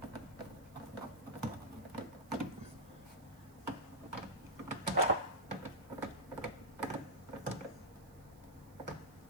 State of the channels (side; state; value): right; noise; hiss, 25 dB below the sound